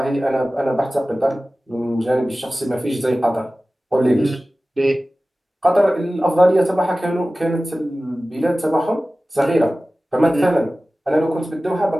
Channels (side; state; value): both; normal; correlation 0.96